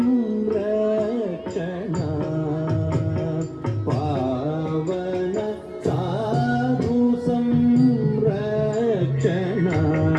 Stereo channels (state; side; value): identical; both; correlation 1.00